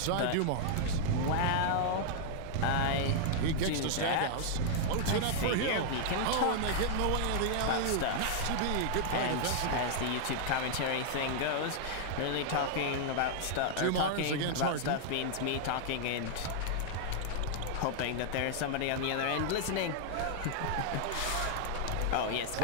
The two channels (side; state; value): both; different; correlation -0.01